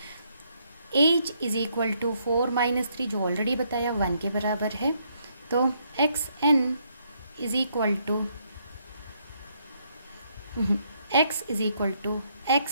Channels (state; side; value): inverted; both; correlation -0.73